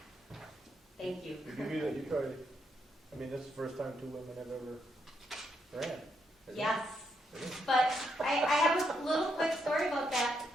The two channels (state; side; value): normal; both; correlation 0.78